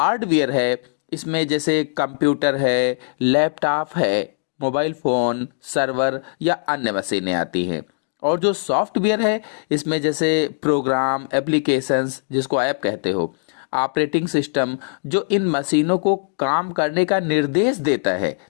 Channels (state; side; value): silent; right; digital silence